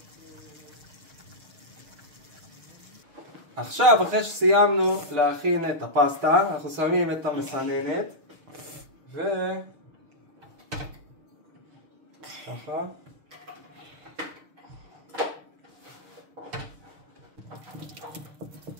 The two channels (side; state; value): left; late; 6.4 ms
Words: עכשיו, אחרי שסיימנו להכין את הפסטה, אנחנו שמים את המסננת ו... ככה.